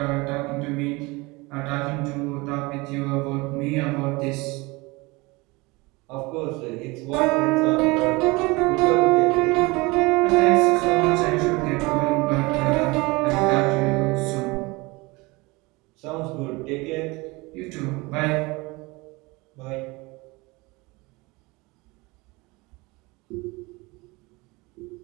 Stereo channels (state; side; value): quieter; left; 24.2 dB